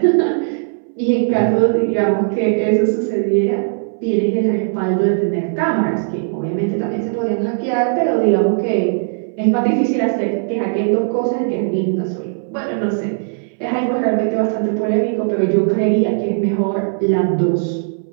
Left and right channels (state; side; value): silent; left; 63 dB below the other